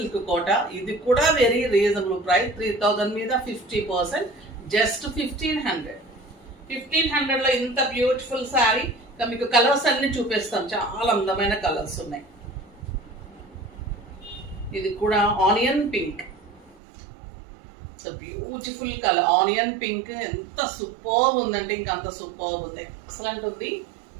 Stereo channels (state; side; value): drops out; left; at 16.8 s